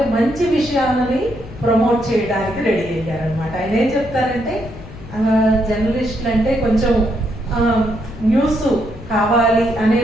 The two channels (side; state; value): left; noise; rumble, 15 dB below the sound